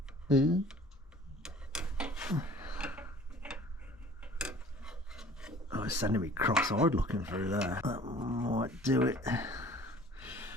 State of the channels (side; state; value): both; normal; correlation 0.49